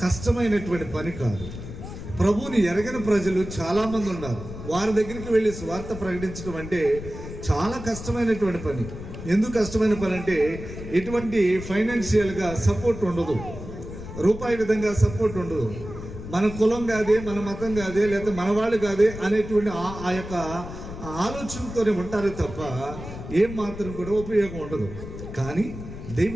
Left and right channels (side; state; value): left; noise; rumble, 10 dB below the sound